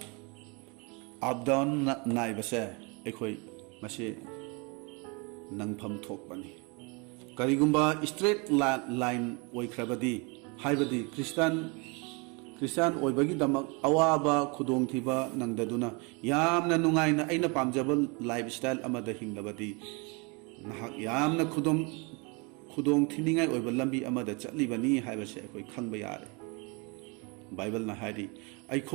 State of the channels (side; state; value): left; quieter; 30.8 dB